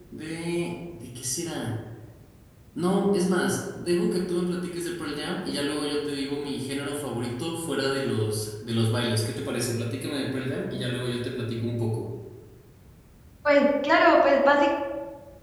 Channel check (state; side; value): identical; both; correlation 1.00